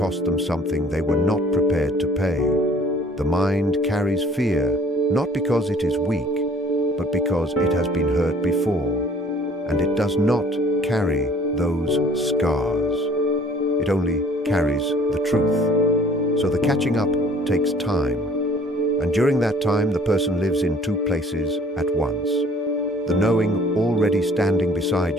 them something they were not prepared to pay. The mind carries fear, not because it is weak, but because it has been hurt before, and it does not carry those scars. It only carries the truth. So the catching up takes time, and during that time the person lives in two places at once. The knowing already standing beside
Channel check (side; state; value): both; normal; correlation 0.54